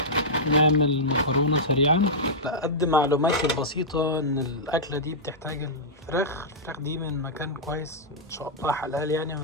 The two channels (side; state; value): both; normal; correlation -0.11